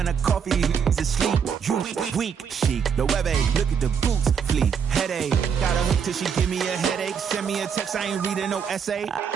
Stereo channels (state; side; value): quieter; left; 7.0 dB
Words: a coffee, is asleep. You weak, chic. The web look at the boots, fleet. Headache, got a hook till she give me a headache. Send me a text, I ain't reading no essay.